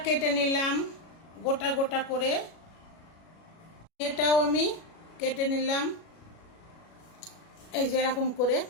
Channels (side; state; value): right; late; 37 ms